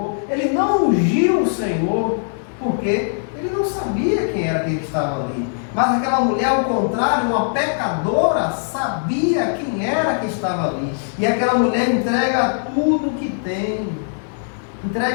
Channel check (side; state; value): right; silent; digital silence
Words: Ele não ungiu o Senhor. Porque Ele não sabia quem era aquele que estava ali. Mas aquela mulher, ao contrário, uma pecadora, sabia quem era que estava ali. E aquela mulher entrega tudo que tem.